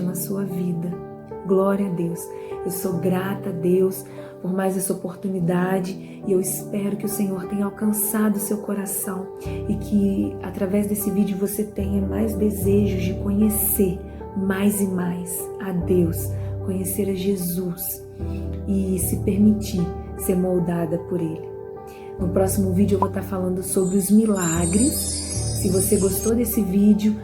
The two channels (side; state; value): both; identical; correlation 1.00